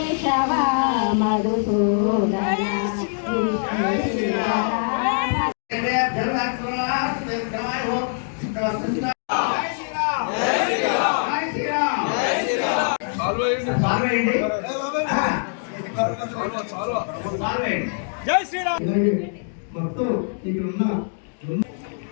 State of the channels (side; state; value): right; silent; digital silence